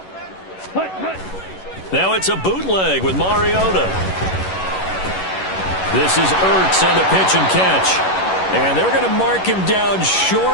Now it's a bootleg with Mariota. This is Ertz on the pitch and catch. And they're going to mark him down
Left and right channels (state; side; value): late; right; 11 ms